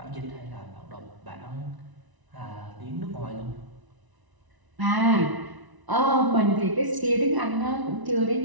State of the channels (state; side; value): late; left; 1.0 ms